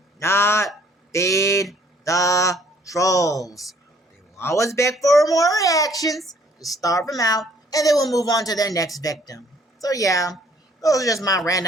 not feed the trolls. Always beg for more reactions, just starve them out, and then we'll move on to their next victim. So yeah, those are just my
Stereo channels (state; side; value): normal; both; correlation 0.61